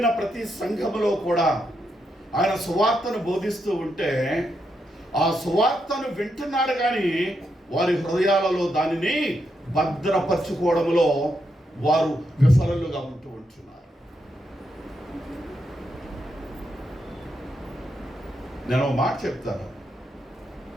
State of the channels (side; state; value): both; normal; correlation 0.82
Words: ప్రతి సంఘములో కూడా ఆయన సువార్తను బోధిస్తూ ఉంటే ఆ సువార్తను వింటున్నారు కానీ వారి హృదయాలలో దానిని భద్రపరచుకోవడంలో వారు విఫలులుగా ఉంటూ ఉంటున్నారు. నేను ఒక మాట చెప్తాను.